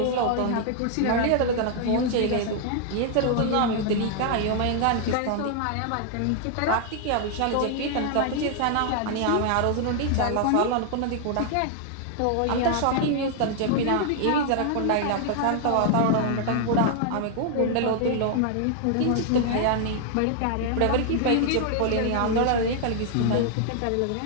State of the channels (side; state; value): both; different; correlation 0.00